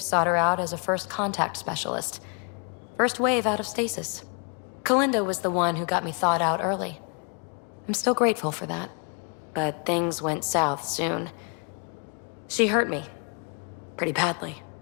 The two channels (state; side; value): quieter; right; 37.9 dB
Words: sought her out as a first contact specialist. First wave out of stasis. Kalinda was the one who got me thawed out early. I'm still grateful for that. But things went south soon. She hurt me. Pretty badly.